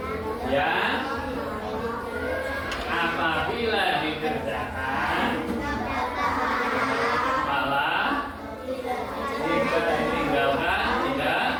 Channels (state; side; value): identical; both; correlation 1.00